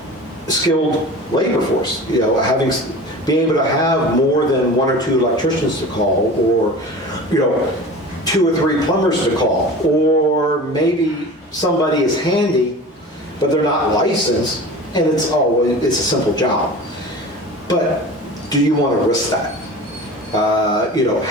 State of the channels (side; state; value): both; normal; correlation 0.36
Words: skilled labor force. Being able to have more than one or two electricians to call, or two or three plumbers to call, or maybe somebody is handy, but they're not licensed, and it's a simple job. But do you want to risk that?